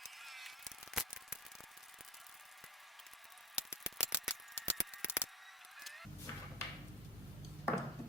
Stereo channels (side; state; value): both; normal; correlation 0.28